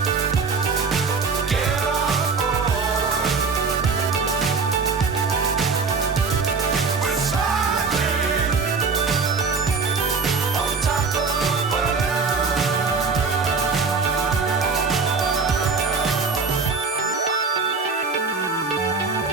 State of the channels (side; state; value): left; quieter; 4.7 dB